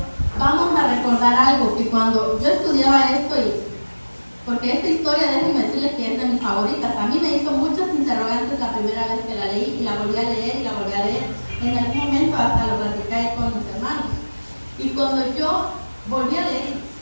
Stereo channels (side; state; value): both; inverted; correlation -1.00